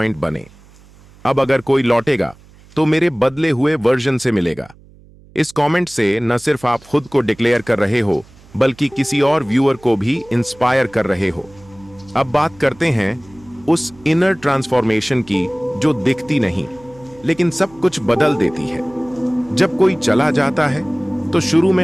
बने। अब अगर कोई लौटेगा तो मेरे बदले हुए वर्जन से मिलेगा। इस कमेंट से न सिर्फ आप खुद को डिक्लेयर कर रहे हो, बल्कि किसी और व्यूअर को भी इंस्पायर कर रहे हो। अब बात करते हैं उस इनर ट्रांसफॉर्मेशन की जो दिखती नहीं, लेकिन सब कुछ बदल देती है। जब कोई चला जाता है तो शुरू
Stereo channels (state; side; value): noise; right; hum, 25 dB below the sound